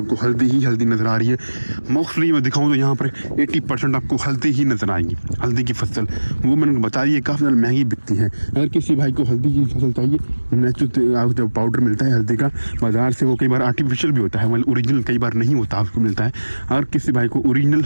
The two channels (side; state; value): both; inverted; correlation -1.00